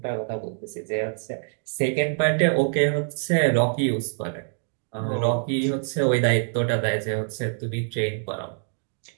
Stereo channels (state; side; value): silent; left; digital silence